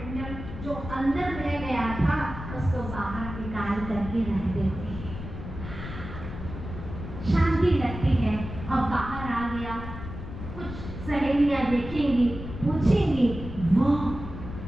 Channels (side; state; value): left; noise; rumble, 9 dB below the sound